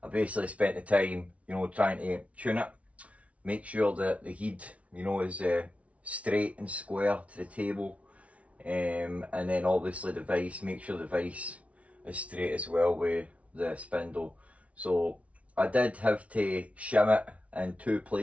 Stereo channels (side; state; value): left; late; 0.065 ms